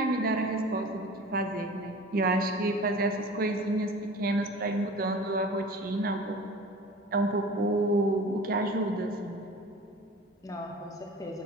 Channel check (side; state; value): both; normal; correlation 0.40